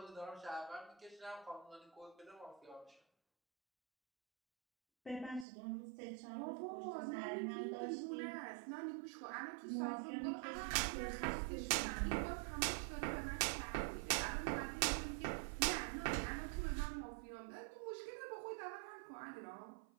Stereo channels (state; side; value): drops out; left; at 5.5 s